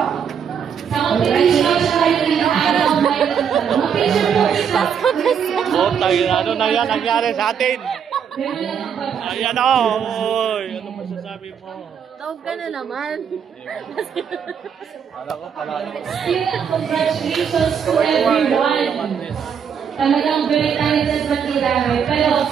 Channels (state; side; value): quieter; left; 7.5 dB